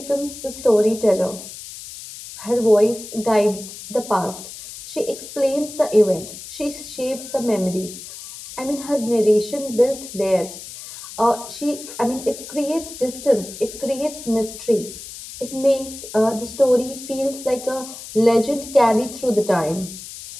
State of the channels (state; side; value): noise; left; hiss, 13 dB below the sound